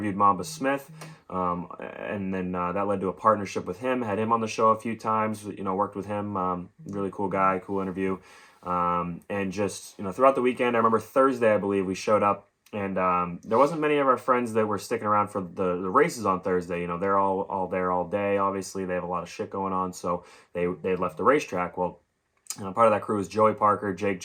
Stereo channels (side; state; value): both; identical; correlation 1.00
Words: Mamba Smith, and then that led to a partnership with him. Had him on the show a few times, worked with him. Really cool guy, cool interview. And just, throughout the weekend, I remember Thursday, I believe, we showed up, and there wasn't many of our friends that were sticking around for the races on Thursday. They're all there all day. Obviously, they have a lot of shit going on, so they left the racetrack. Well, part of that crew was Joey Parker, Jake